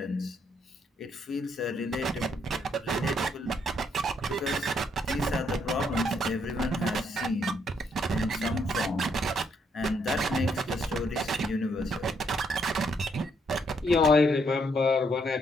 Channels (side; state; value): both; normal; correlation 0.73